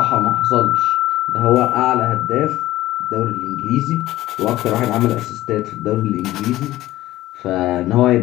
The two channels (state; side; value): quieter; right; 15.9 dB